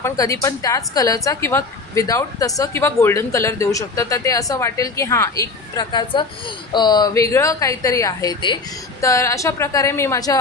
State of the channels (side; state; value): right; quieter; 3.9 dB